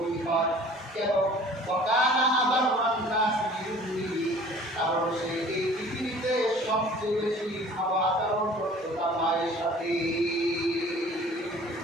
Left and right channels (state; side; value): normal; both; correlation 0.49